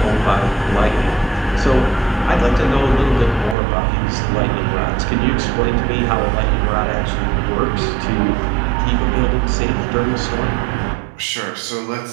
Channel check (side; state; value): left; drops out; at 3.6 s